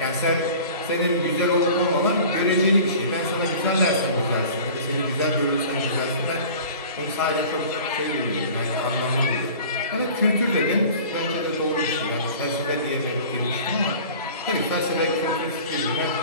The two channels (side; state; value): both; inverted; correlation -0.42